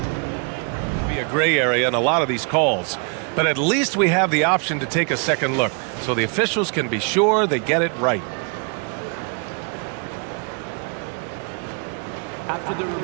Be a gray area in a lot of these calls, but at least we have the option to take a second look, so the officials can be sure they get it right. After the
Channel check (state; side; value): quieter; left; 38.5 dB